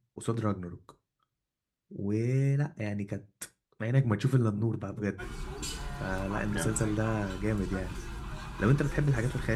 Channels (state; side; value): identical; both; correlation 1.00